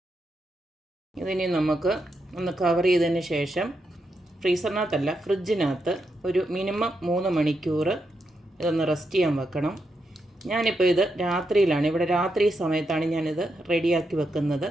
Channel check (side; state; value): both; normal; correlation 0.83